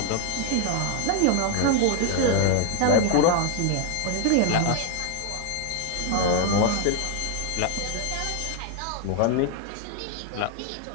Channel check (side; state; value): both; different; correlation 0.00